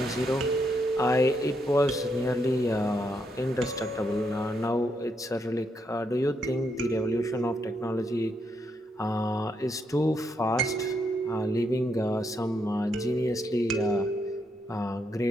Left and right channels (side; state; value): both; normal; correlation 0.78